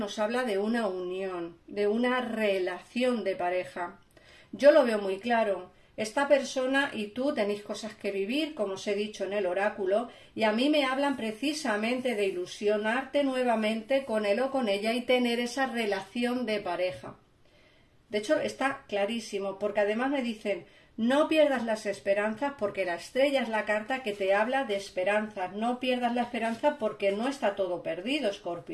habla de una unión, de una relación de pareja. Yo lo veo muy claro. Esta persona y tú tenéis cosas que vivir, como os he dicho en el oráculo, y a mí me hablan precisamente de ilusionarte nuevamente con él o con ella y tener esa relación de pareja. De hecho, está clarísimo, porque además me dicen, no pierdas las esperanzas, porque la estrella es la carta que te habla de esperanzas. No pierdas la esperanza porque no está todo perdido,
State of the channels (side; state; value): both; identical; correlation 1.00